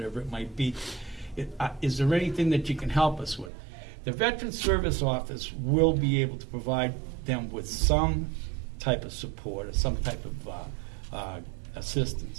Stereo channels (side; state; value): left; drops out; at 3.5 s